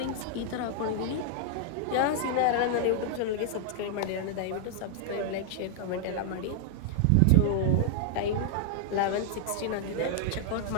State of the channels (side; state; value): both; different; correlation -0.01